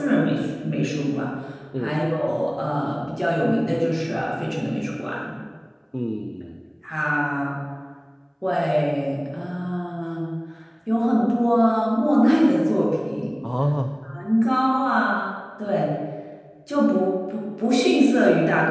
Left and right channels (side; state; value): both; identical; correlation 1.00